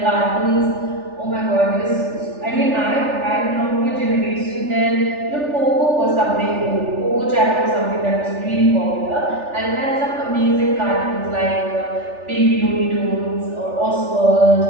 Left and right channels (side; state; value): left; late; 3.4 ms